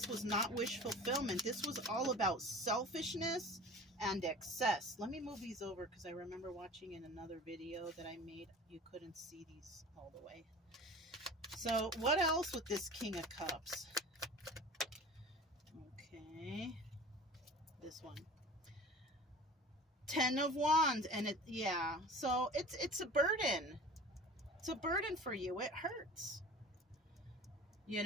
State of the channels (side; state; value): both; normal; correlation 0.40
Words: was not wish fulfillment. This was all about selfishness and excess. Let me move these over because I remember watching in another video that I made. You couldn't see these all the way. So what else with this King of Cups? Okay. This one. 10 of Wands. And it, yeah. So it's a burden. It's a burden for you. It hurts. You